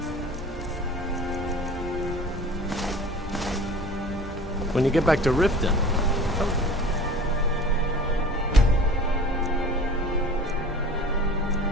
When you get back to Riften,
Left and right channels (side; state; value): both; normal; correlation 0.42